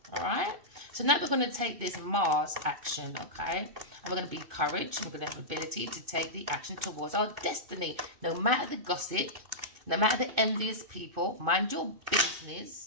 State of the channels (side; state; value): left; late; 2.5 ms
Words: all right? So now we're going to take this Mars action, okay? And we're going to be courage, and we're going to have ability to take the action towards our destiny. No matter the gossip, no matter the envious people, mind your